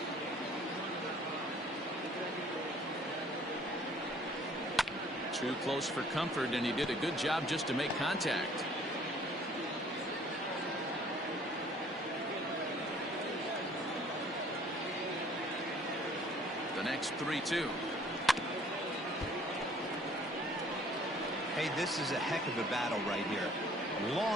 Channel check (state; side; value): normal; both; correlation 0.56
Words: Too close for comfort, and he did a good job just to make contact. The next 3-2. Hey, this is a heck of a battle right here.